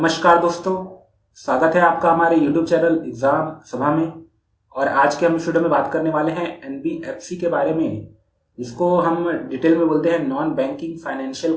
दोस्तों, स्वागत है आपका हमारे YouTube चैनल एग्जाम सभा में। और आज के हम इस वीडियो में बात करने वाले हैं एनबीएफसी के बारे में, जिसको हम डिटेल में बोलते हैं नॉन बैंकिंग फाइनेंशियल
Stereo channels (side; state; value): both; identical; correlation 1.00